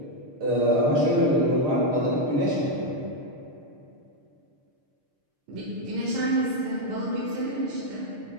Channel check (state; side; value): late; left; 6.6 ms